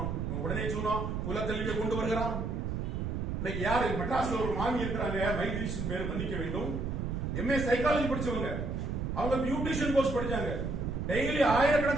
உடனே சொன்னோம் குலக்கல்வியை கொண்டு வருகிறான். இன்னைக்கு யாரு மெட்ராஸ்ல ஒரு மாமி இருக்கிறாங்க, மைக்ரேஷன் பேர் மன்னிக்க வேண்டும், எம்ஏ சைக்காலஜி படிச்சவங்க, அவங்க பியூட்டிஷியன் கோர்ஸ் படிச்சாங்க, டெய்லி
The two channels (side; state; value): right; noise; rumble, 2 dB below the sound